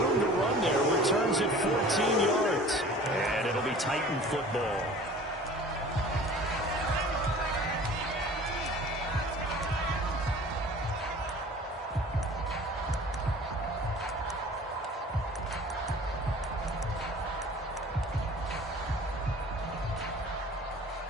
to run there. Returns at 14 yards. And it'll be Titan football.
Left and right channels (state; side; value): normal; both; correlation 0.45